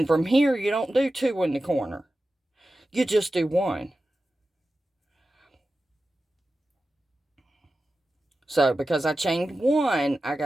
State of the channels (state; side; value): normal; both; correlation 0.93